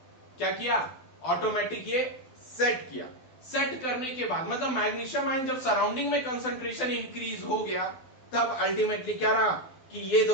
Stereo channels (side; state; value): right; late; 12 ms